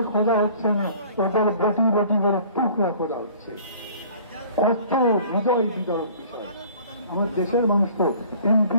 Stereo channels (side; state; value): both; inverted; correlation -0.50